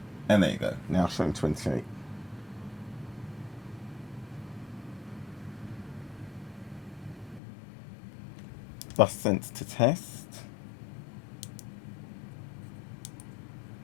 And there you go, now showing 28. Bus sense to test.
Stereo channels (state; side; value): drops out; right; at 7.4 s